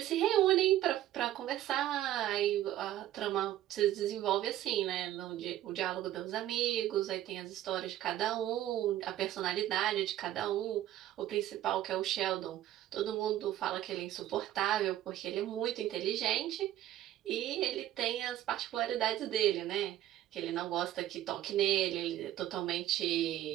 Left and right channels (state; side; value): quieter; left; 13.2 dB